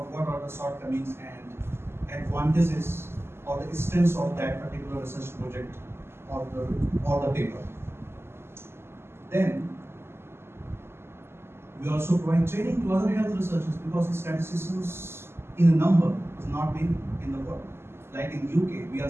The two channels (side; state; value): left; late; 0.12 ms